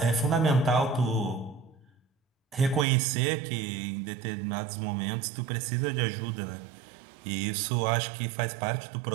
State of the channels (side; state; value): left; drops out; at 2.9 s